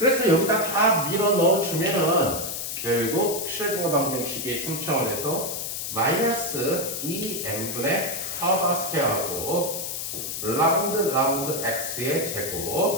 여기다 다 밀어 넣어주면은 결국 슈레딩거 방정식이 3차원에서 마이너스 2n분의 하바 스퀘어하고 라운드 x의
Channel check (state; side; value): noise; left; hiss, 4 dB below the sound